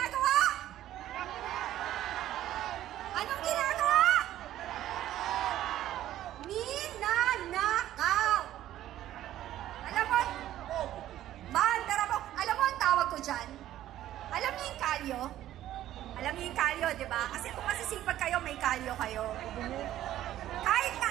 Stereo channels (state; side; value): quieter; left; 13.1 dB